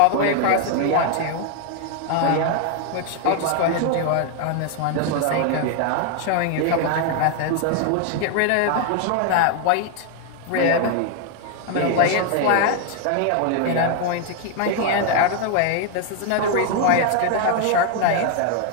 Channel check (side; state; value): both; different; correlation 0.00